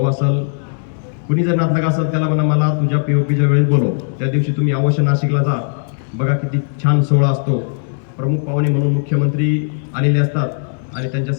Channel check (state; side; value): silent; right; 68 dB below the other